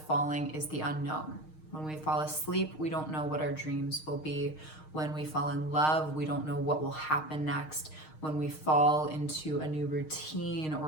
falling is the unknown. When we fall asleep, we don't know what our dreams will be. When we fall in love, we don't know what will happen next. When we fall into a new routine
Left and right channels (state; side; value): late; right; 6.5 ms